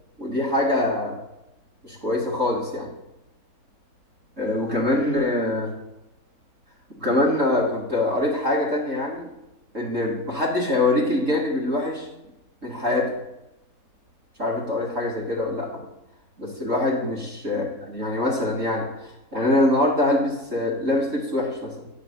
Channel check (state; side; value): late; left; 3.7 ms